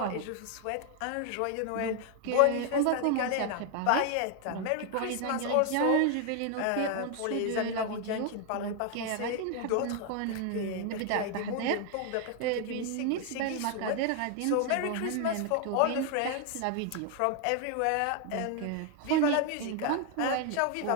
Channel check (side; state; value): both; different; correlation 0.00